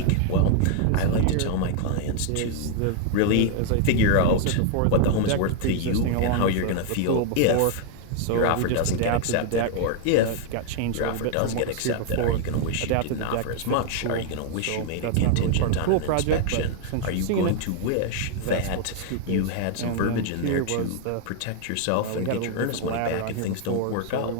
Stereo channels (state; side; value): different; both; correlation 0.00